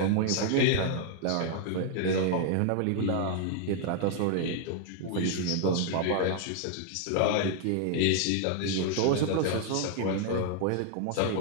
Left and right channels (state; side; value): different; both; correlation 0.00